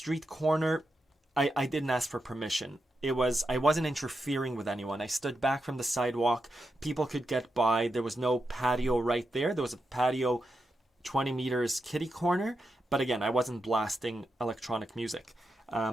corner, I didn't ask for permission. I wasn't interfering with anyone. I stood back from the sidewalk. People could get by. There was no patio right there. There was a patio 20 meters kitty corner. But again, I wasn't blasting electronic music.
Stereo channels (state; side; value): normal; both; correlation 0.87